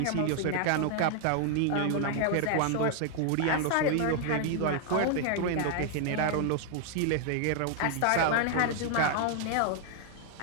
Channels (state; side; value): different; both; correlation 0.00